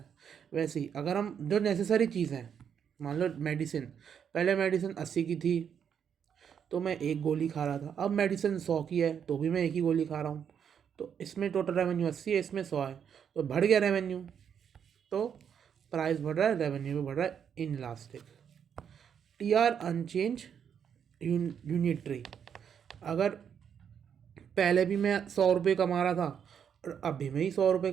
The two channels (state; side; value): quieter; left; 7.9 dB